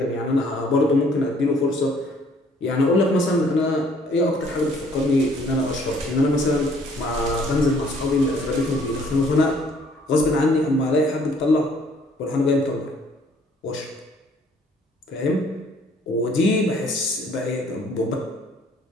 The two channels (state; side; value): normal; both; correlation 0.60